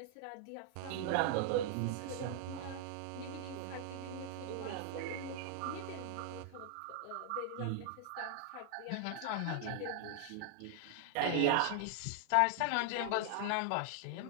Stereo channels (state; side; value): different; both; correlation 0.00